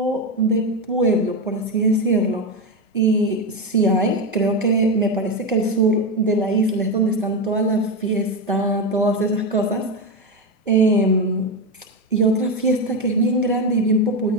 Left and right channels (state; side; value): normal; both; correlation 0.13